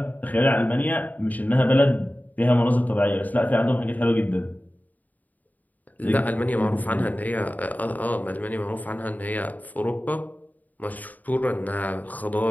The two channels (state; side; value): late; right; 0.079 ms